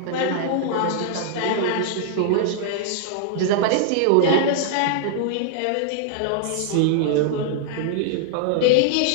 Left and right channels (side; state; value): both; different; correlation -0.01